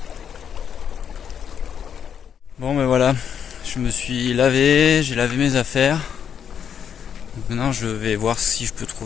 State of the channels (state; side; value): quieter; right; 8.1 dB